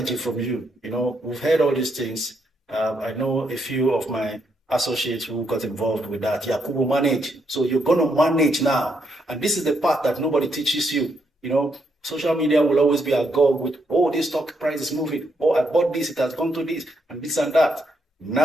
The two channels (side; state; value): both; normal; correlation 0.77